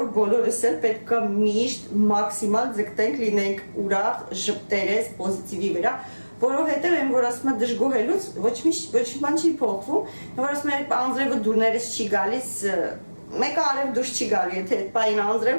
որ բոլորս էլ պետք է միշտ մաքսիմալ ձգտենք լինենք ուրախ, ժպտերես, պոզիտիվի վրա, որովհետև այն որ ասում է դժգոհելուց ոչ մի բան չի փոխվում, որ ասում է անձրևը դուրներս չի գալիս, մեկը արև դուրս չի գալու, եթե այդ պային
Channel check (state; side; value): inverted; both; correlation -1.00